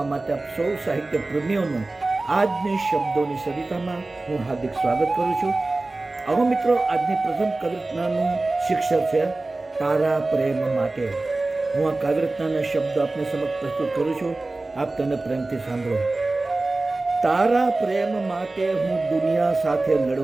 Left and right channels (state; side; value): quieter; left; 3.1 dB